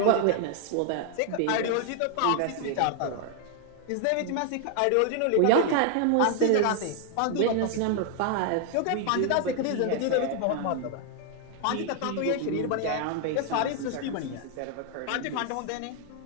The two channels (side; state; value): both; different; correlation 0.00